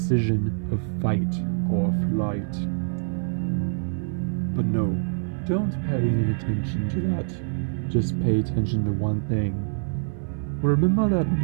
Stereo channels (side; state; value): left; silent; 56 dB below the other